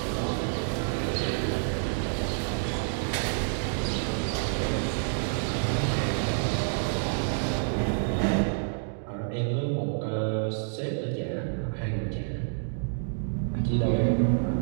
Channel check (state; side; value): silent; left; digital silence